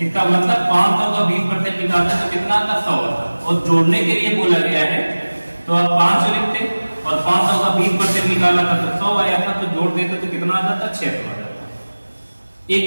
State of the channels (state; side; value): inverted; both; correlation -1.00